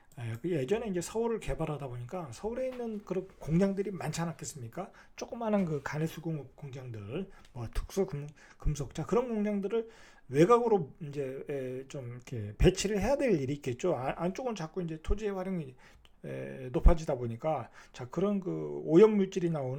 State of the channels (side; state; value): both; identical; correlation 1.00